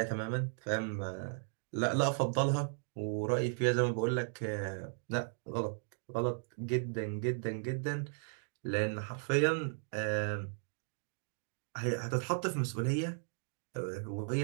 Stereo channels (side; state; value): left; silent; digital silence